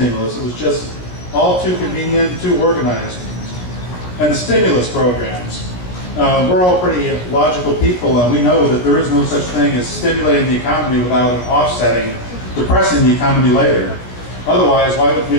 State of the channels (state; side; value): late; right; 17 ms